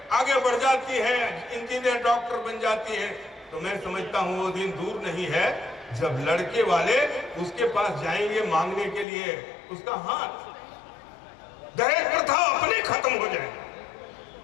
आगे बढ़ जाती है, इंजीनियर डॉक्टर बन जाती है, तो मैं समझता हूं वो दिन दूर नहीं है जब लड़के वाले उसके पास जाएंगे मांगने के लिए उसका हाथ। दहेज प्रथा अपने खत्म हो जाएगी।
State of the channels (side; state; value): right; drops out; at 9.1 s